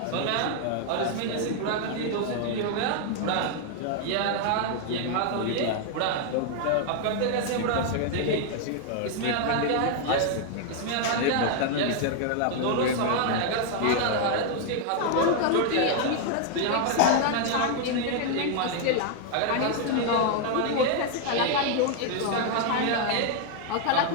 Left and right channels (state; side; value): different; both; correlation 0.00